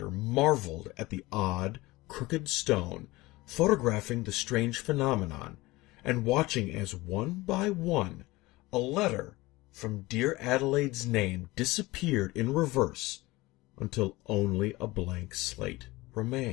marveled at the odd, crooked stone, photographing the strange phenomenon, and watching as one by one a letter from dear Adelaide's name disappeared in reverse until only a blank slate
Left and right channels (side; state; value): right; quieter; 20.5 dB